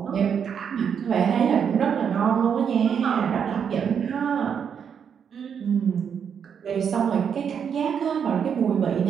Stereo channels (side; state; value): left; quieter; 7.5 dB